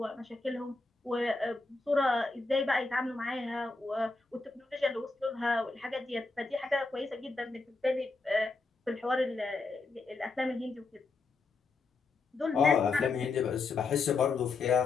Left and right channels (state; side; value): quieter; right; 3.9 dB